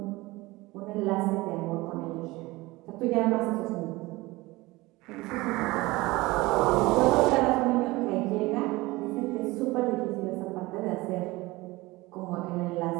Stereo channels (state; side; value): quieter; left; 20.9 dB